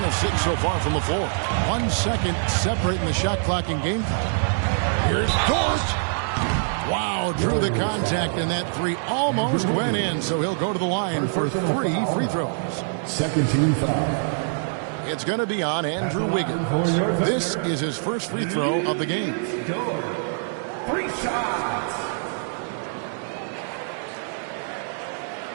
of 6 so far from the floor. 1 second separating the shot clock and game time. Here's Dort. Wow, drew the contact, and that 3 almost went in, so he'll go to the line for 3 free throws. Second team foul. It's going to be on Andrew Wiggins. This is his first free throw of the game. 3 shots.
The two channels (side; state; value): left; silent; digital silence